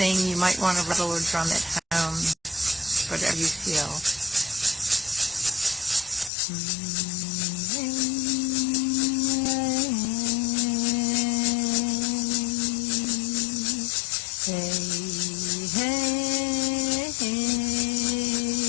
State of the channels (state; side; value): drops out; right; at 6.3 s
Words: you might want to rattle or drum at home, whatever you feel.